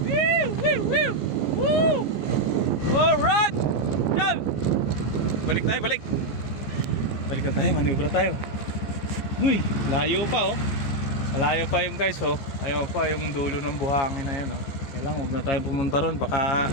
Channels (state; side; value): late; right; 14 ms